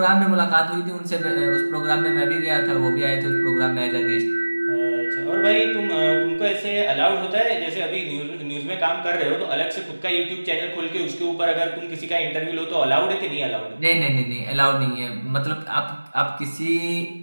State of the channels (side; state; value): both; inverted; correlation -1.00